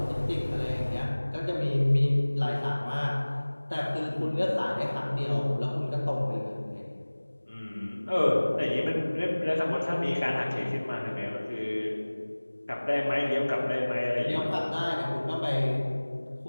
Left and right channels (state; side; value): inverted; both; correlation -1.00